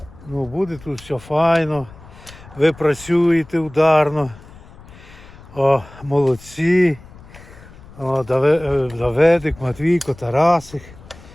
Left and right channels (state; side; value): noise; left; rumble, 20 dB below the sound